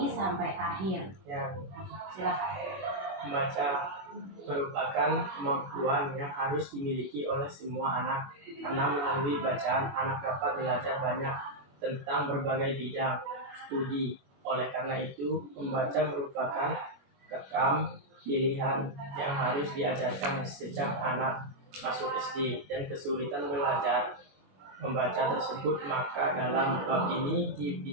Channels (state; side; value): late; left; 21 ms